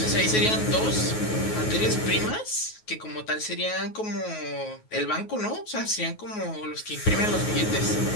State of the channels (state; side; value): late; right; 9.4 ms